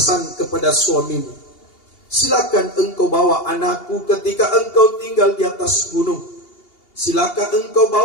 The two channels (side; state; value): right; late; 2.8 ms